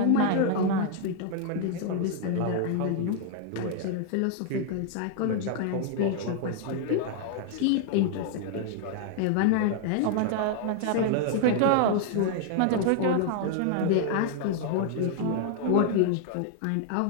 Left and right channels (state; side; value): different; both; correlation 0.00